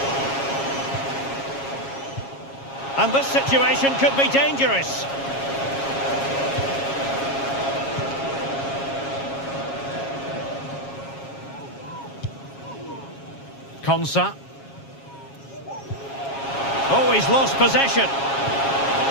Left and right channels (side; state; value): right; late; 7.3 ms